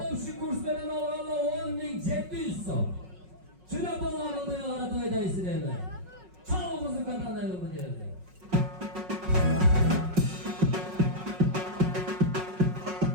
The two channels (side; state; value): left; late; 5.4 ms